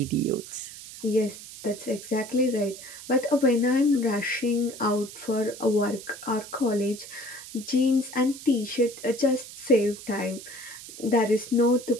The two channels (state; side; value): noise; right; hiss, 14 dB below the sound